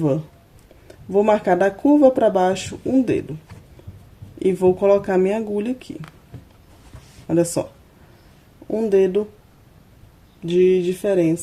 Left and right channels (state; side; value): identical; both; correlation 1.00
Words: Vou marcar da curva pra baixo um dedo. E vou colocar minha agulha aqui. Olha só. Um dedo de